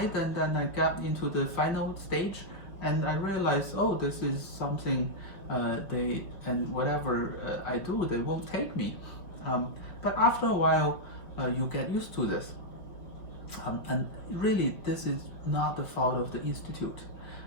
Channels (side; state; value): right; late; 5.0 ms